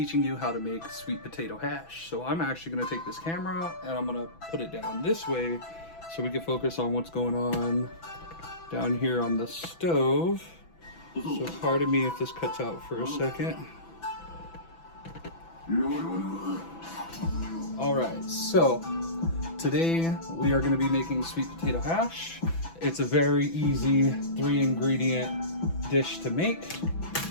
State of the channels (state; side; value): late; right; 6.0 ms